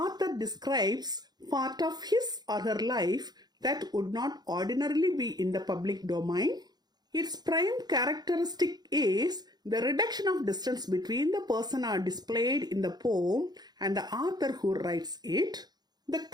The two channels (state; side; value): late; left; 0.20 ms